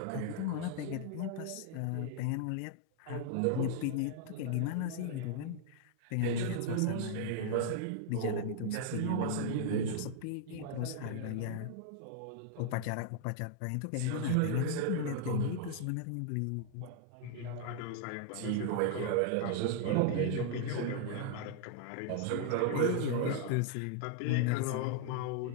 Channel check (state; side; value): different; both; correlation -0.01